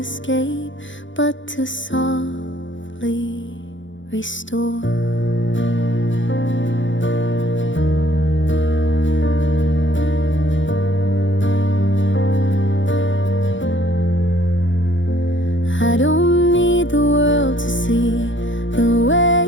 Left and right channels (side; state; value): right; late; 0.55 ms